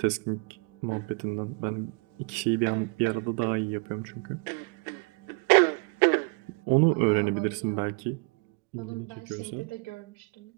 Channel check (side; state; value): left; quieter; 33.3 dB